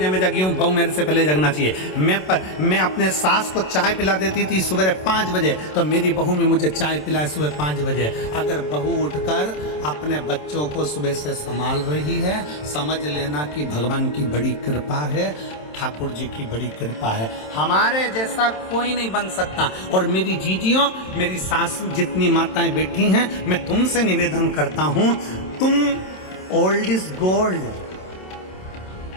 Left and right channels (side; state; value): right; late; 27 ms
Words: में जगी हूँ, बहू मेरे से पहले जगना चाहिए। मैं अपने सास को चाय पिला देती थी सुबह 5 बजे, तो मेरी बहू भी मुझे चाय पिलाए सुबह 5 बजे। अगर बहू उठकर अपने बच्चों को सुबह से संभाल रही है, समझ लेना कि भगवान की बड़ी कृपा है, ठाकुर जी की बड़ी कृपा है। हमारे जैसा कोई नहीं बन सकता। और मेरी जीजियों, मेरी सास जितनी माताएं बैठी हैं, मैं तुमसे निवेदन करता हूँ, तुम ओल्ड इज गोल्ड।